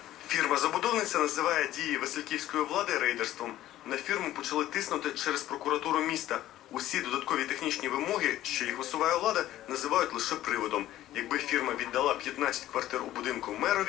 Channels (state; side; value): quieter; right; 14.0 dB